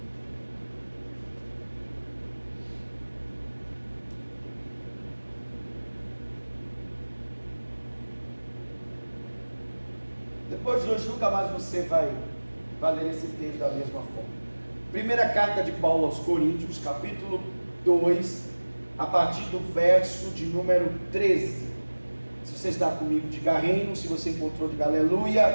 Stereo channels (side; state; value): both; inverted; correlation -1.00